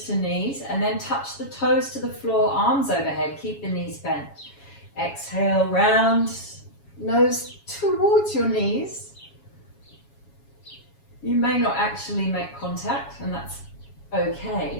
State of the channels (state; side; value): late; right; 7.2 ms